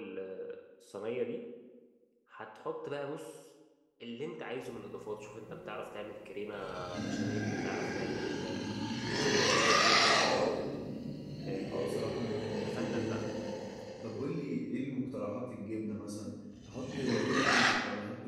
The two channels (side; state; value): both; identical; correlation 1.00